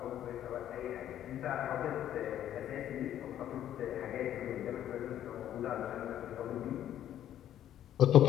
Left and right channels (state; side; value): quieter; right; 11.3 dB